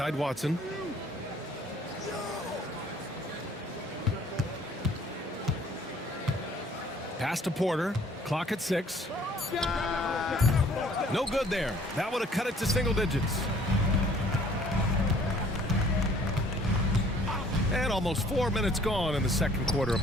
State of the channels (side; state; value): both; normal; correlation 0.56